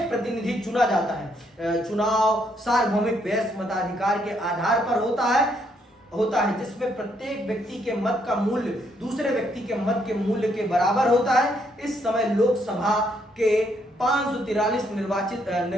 प्रतिनिधि चुना जाता है। चुनाव सार्वभौमिक वयस्क मताधिकार के आधार पर होता है, जिसमें प्रत्येक व्यक्ति के मत का मूल्य दूसरे व्यक्ति के मत के मूल्य के बराबर होता है। इस समय लोकसभा के 543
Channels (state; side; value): normal; both; correlation 0.73